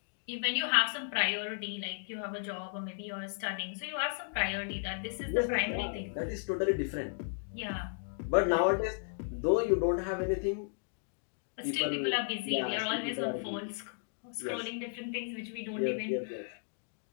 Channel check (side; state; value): right; silent; digital silence